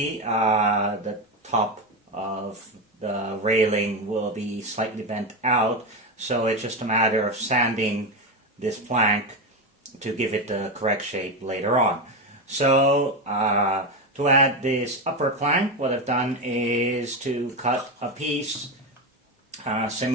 The top of the railing will be slightly bent out, so it's just a matter of sanding this plank to give it the correct shape later on. So to add this upper plank, what I've done is to cut a piece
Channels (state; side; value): normal; both; correlation 0.14